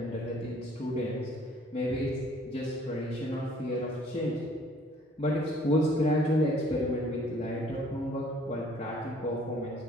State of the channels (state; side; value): normal; both; correlation 0.58